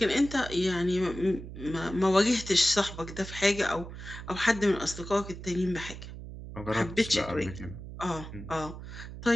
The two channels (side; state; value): right; noise; hum, 11 dB below the sound